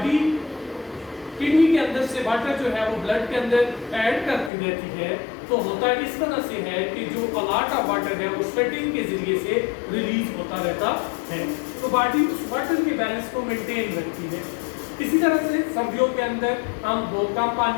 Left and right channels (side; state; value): right; drops out; at 4.5 s